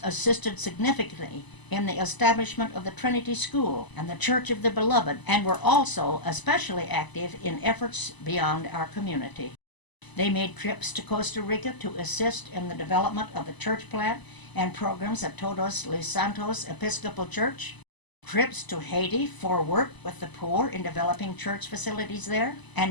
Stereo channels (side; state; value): right; late; 1.0 ms